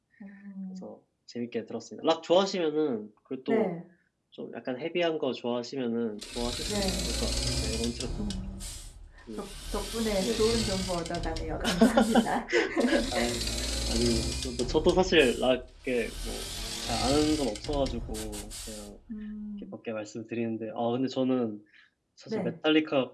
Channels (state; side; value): identical; both; correlation 1.00